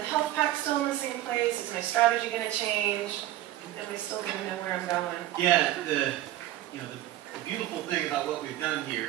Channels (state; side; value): quieter; left; 14.2 dB